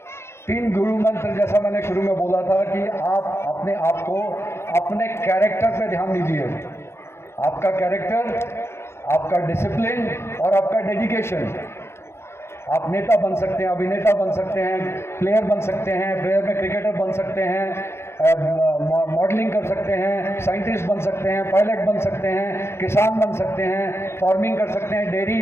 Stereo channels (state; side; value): late; right; 0.12 ms